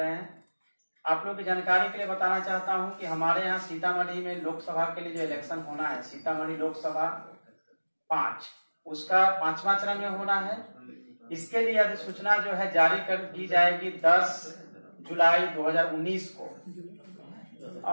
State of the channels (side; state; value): both; inverted; correlation -1.00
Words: हैं। आप लोग की जानकारी के लिए बताना चाहता हूं कि हमारे यहाँ सीतामढ़ी में लोकसभा के लिए जो इलेक्शन होना है, सीतामढ़ी लोकसभा 5, उसका 5वां चरण में होना है। इसके लिए अधिसूचना जो है जारी कर दी जाएगी 10 जुलाई 2019 को,